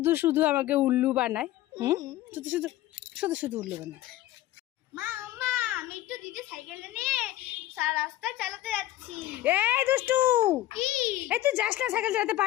শুধু আমাকে উল্লু বানায়। শুধু শুধু শুধু শুধু উল্লু বানায়। মা মা, আমি একটু দিদি সাইকেলটা নিয়ে রাস্তা চালাতে যাচ্ছি। এই দুষ্টু, কি? এই তুই যাস না, সাইকেল চালাতে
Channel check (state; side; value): quieter; right; 15.2 dB